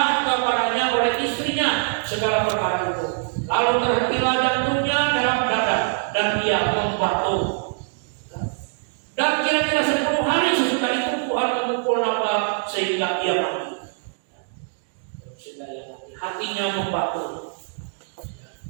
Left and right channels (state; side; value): silent; left; digital silence